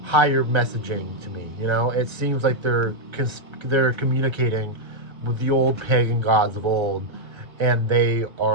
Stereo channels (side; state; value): left; late; 1.3 ms